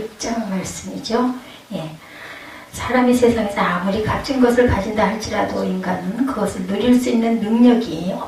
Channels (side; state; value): both; identical; correlation 1.00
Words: 말씀이죠. 예. 사람이 세상에서 아무리 값진 것을 가진다 할지라도 인간은 그것을 누릴 수 있는 능력이